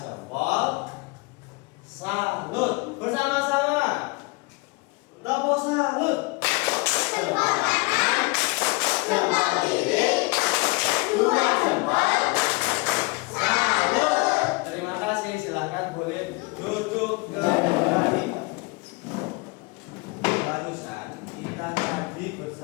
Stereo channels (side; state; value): right; quieter; 26.9 dB